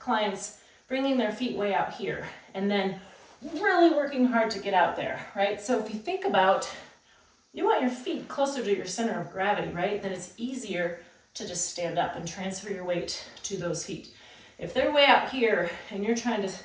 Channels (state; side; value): identical; both; correlation 1.00